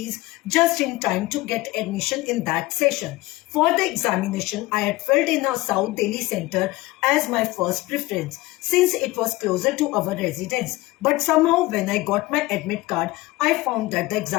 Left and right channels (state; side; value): quieter; right; 19.8 dB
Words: just in time to get admission in that session. For the examination, I had filled in a South Delhi center as my first preference, since it was closer to our residence. But somehow when I got my admit card, I found that the